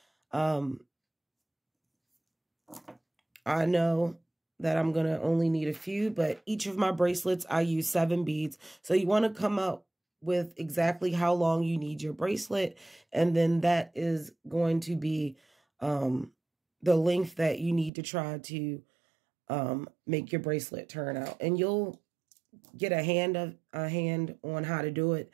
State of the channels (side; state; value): left; drops out; at 17.9 s